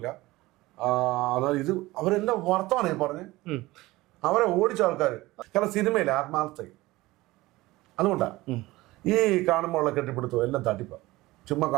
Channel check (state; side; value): quieter; left; 19.2 dB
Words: എന്നാൽ ഇത് അവരെല്ലാം വർത്തമാനേ പറഞ്ഞ് അവരെ ഓടിച്ച ആൾക്കാർ. കാരണം സിനിമയിൽ ആത്മാർത്ഥ അതുകൊണ്ടാ ഈ കാണുമ്പോഴുള്ള കെട്ടിപ്പിടുത്തം എല്ലാം തട്ടിപ്പ. ചുമ്മാ